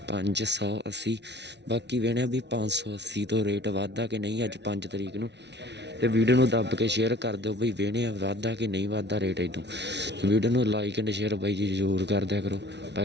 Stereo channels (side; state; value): left; late; 0.50 ms